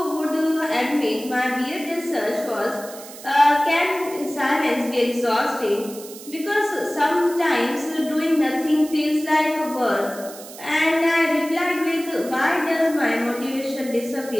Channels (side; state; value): right; noise; hiss, 16 dB below the sound